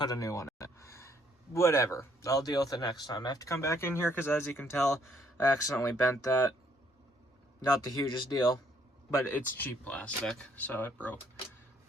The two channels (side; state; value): both; normal; correlation 0.67